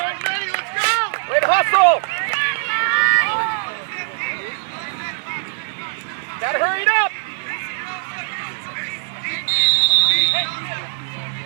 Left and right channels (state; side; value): silent; left; digital silence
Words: Ready, let's go! Way to hustle! Gotta hurry it up!